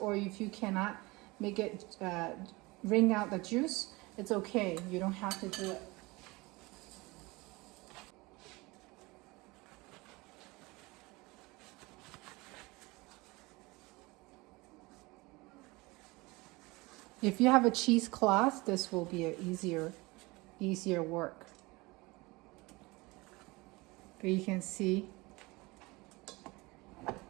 if you cannot make it wring out the juice, it's okay. You don't have to do it. If you have a cheesecloth, this will be an easier work. But you can see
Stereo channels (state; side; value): quieter; left; 23.5 dB